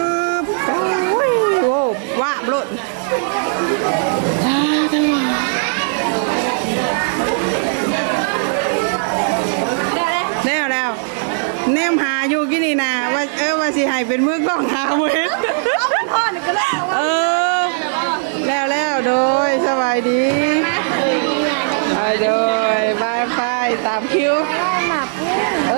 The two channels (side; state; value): left; silent; 66 dB below the other